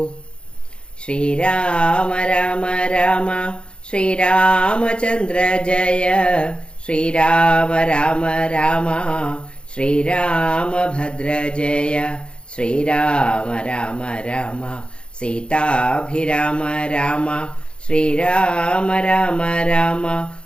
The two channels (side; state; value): right; late; 0.054 ms